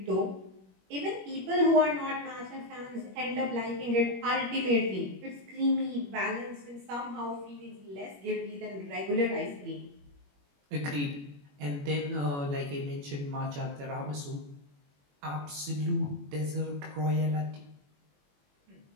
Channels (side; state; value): left; late; 21 ms